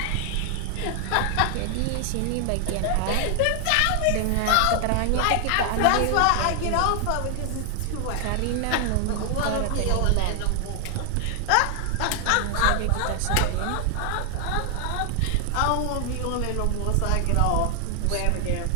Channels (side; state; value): both; different; correlation 0.00